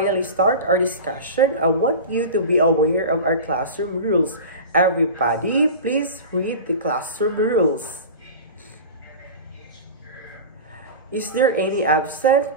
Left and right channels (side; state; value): both; inverted; correlation -0.30